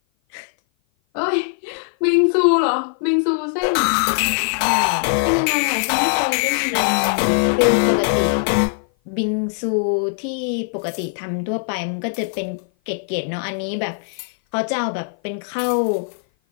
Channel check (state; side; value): silent; right; 56 dB below the other